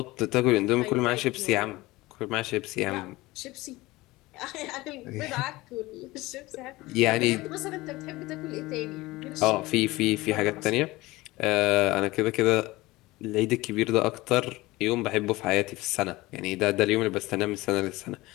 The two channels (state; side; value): quieter; right; 20.0 dB